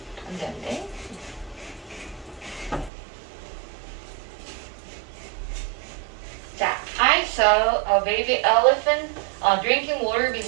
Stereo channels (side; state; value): left; drops out; at 2.9 s